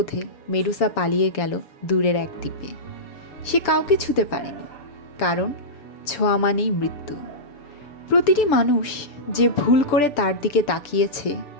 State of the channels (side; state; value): right; late; 6.9 ms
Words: মেডুসা পালিয়ে গেল দূরের এক দ্বীপে। সে কাউকে ছুঁতে পারেনি, কারণ ছোঁয়া মানেই মৃত্যু। প্রতিটি মানুষ যে ভুল করে তার দিকে তাকিয়েছে